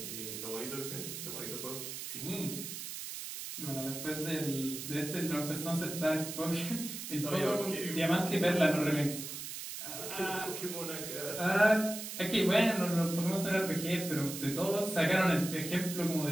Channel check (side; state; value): right; noise; hiss, 7 dB below the sound